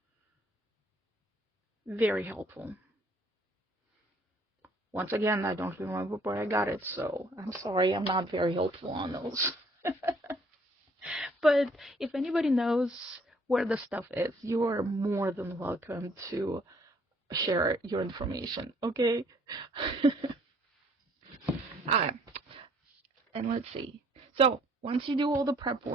Very helpful. Once again, I don't remember where I got it, so I'm sorry I'm not very helpful on those. But if anybody knows where the stuff is, you're more than welcome to share your information, okay? Alright, and let's see. So, once you do all the prep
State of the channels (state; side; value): normal; both; correlation 0.61